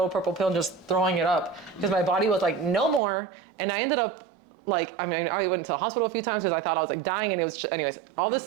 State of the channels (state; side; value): drops out; left; at 3.0 s